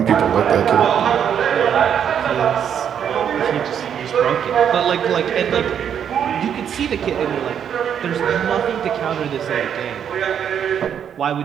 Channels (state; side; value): quieter; left; 8.5 dB